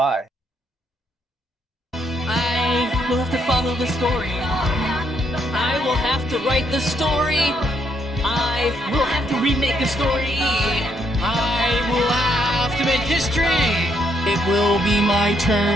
I will have to follow the story. I will have to write the story. I will have to remake the story. I will have to make history. It will be my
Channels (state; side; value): normal; both; correlation 0.74